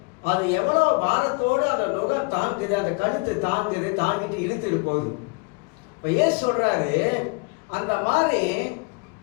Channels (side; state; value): right; quieter; 31.5 dB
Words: அது எவ்வளவு பாரத்தோடு அந்த நுகம் தாங்குது, அந்த கழுத்து தாங்குது, தாங்கிட்டு இழுத்துட்டு போகுது. இப்ப ஏன் சொல்றாரு, அந்த மாதிரி